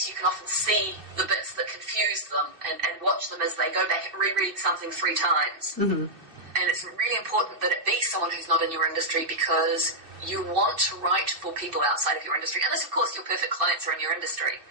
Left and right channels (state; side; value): late; left; 2.6 ms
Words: you can often see the bits that confuse them and watch them as they go back and reread something 3 times. Mm-hmm. And it's really important that it be someone who's not in your industry, because you want to write for people outside of your industry. Unless, of course, your perfect clients are in your industry.